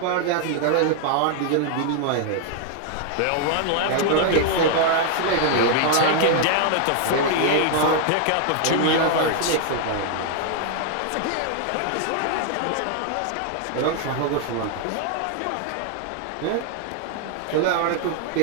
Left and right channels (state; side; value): different; both; correlation 0.00